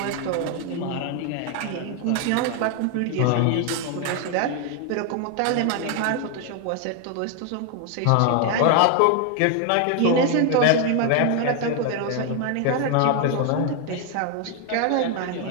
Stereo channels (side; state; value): both; different; correlation 0.01